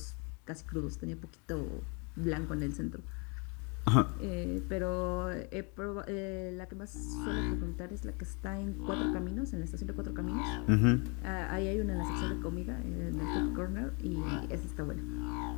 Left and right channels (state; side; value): quieter; right; 33.5 dB